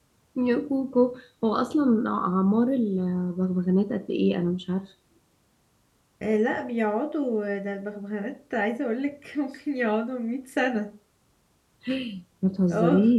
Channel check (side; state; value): both; identical; correlation 1.00